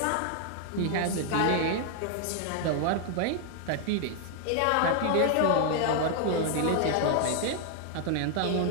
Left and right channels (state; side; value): different; both; correlation 0.00